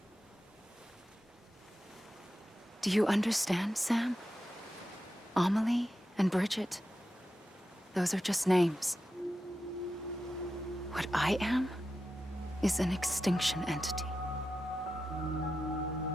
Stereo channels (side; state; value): both; normal; correlation 0.90